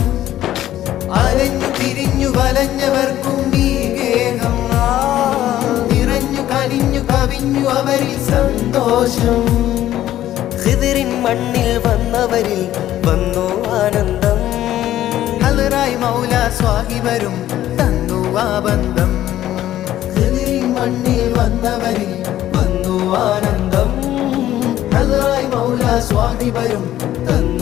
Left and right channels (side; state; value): right; quieter; 13.0 dB